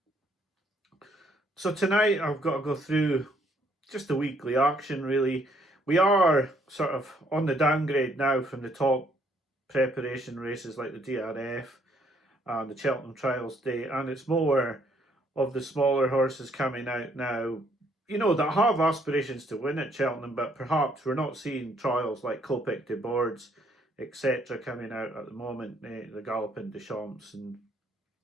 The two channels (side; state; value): both; normal; correlation 0.68